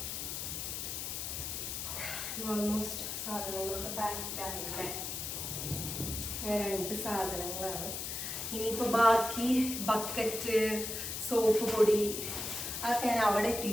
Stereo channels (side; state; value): left; noise; hiss, 4 dB below the sound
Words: ഓൾമോസ്റ്റ് സാധനങ്ങളൊക്കെ പാക്ഡ് ആയില്ലേ. 2 സാധനങ്ങളാണ്. ഇനിയിപ്പോൾ ബാക്കി ബക്കറ്റ്, സോപ്പ് പൊടി അതൊക്കെ ഞാൻ അവിടെ